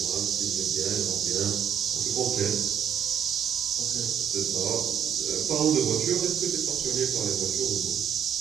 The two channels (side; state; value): left; quieter; 8.5 dB